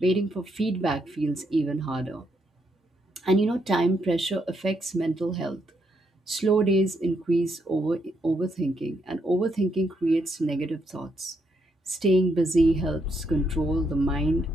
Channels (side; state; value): both; normal; correlation 0.77